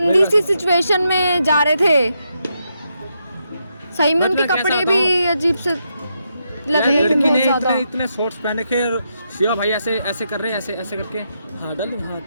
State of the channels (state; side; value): inverted; both; correlation -0.82